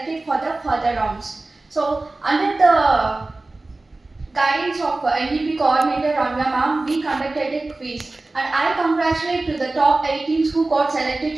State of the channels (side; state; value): left; quieter; 3.1 dB